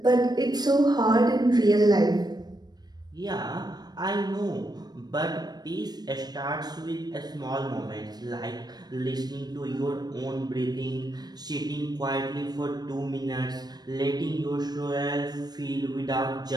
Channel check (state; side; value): late; left; 0.19 ms